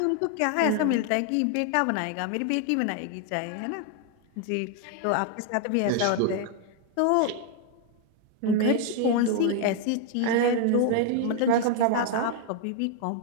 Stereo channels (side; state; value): both; different; correlation 0.00